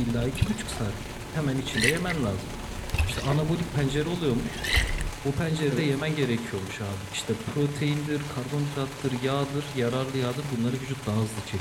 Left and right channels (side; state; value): both; identical; correlation 1.00